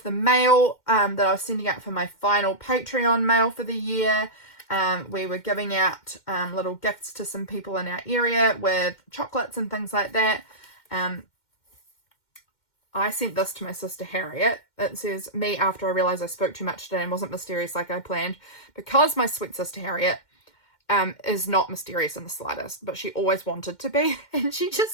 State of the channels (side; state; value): right; late; 2.1 ms